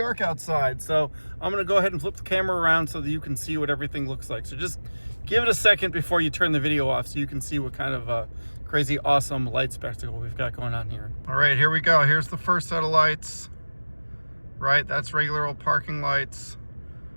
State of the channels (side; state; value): both; inverted; correlation -1.00